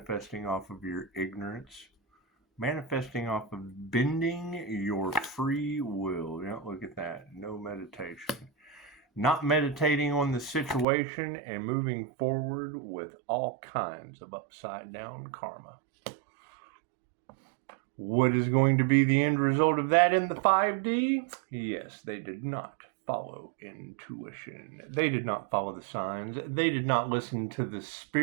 off of your ignorance, manifesting off of bending your free will. Look at that. No meditation. Not meditating on the situation and moving forward with all kinds of upside down karma. What is going to be the end result of that in the 5D? Yes, they did not follow intuition. They did not follow the signs. They did not listen to the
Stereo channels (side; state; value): left; drops out; at 10.9 s